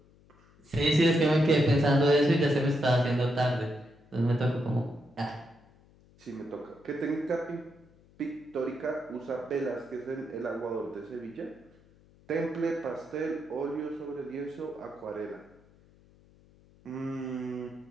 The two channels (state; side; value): noise; left; hum, 28 dB below the sound